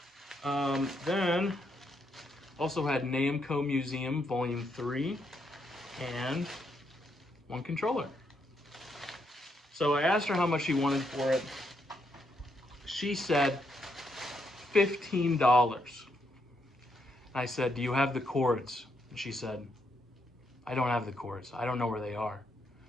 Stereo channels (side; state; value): both; normal; correlation 0.77